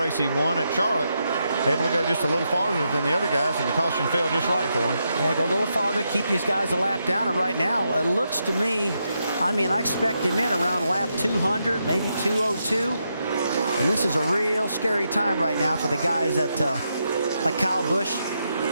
he won at Charlotte. Able to go just a little farther than the other guys, and the caution fell just right for him. Yeah, go a little farther, keep these guys a lap down, and right now it looks to me, I expect him in around lap 200, maybe 202. And this is a real scary time right now for the guys that, like Kyle Busch,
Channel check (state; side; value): inverted; both; correlation -0.83